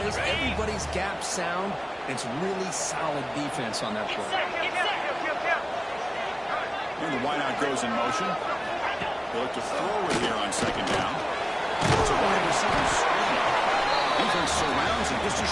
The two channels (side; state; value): both; identical; correlation 1.00